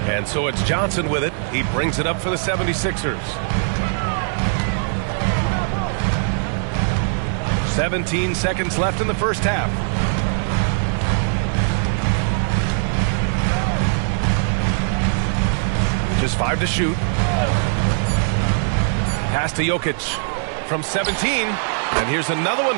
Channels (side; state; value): left; silent; 65 dB below the other